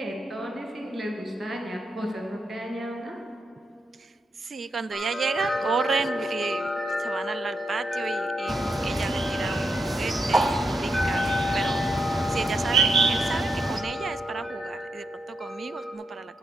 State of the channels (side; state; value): both; normal; correlation 0.83